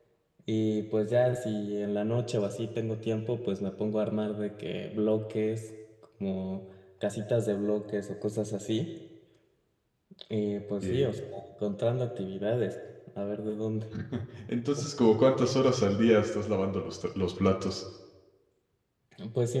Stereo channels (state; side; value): identical; both; correlation 1.00